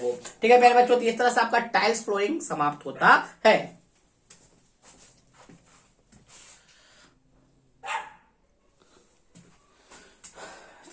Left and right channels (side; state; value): both; identical; correlation 1.00